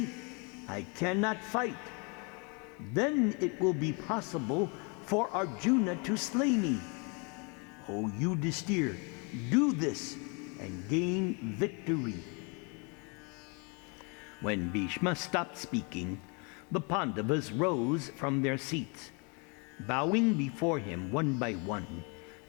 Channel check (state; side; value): quieter; right; 33.0 dB